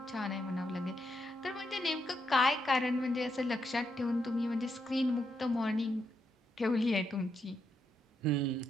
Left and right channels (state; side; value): normal; both; correlation 0.80